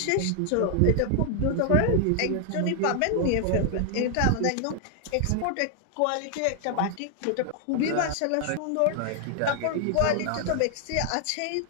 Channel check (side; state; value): both; different; correlation 0.00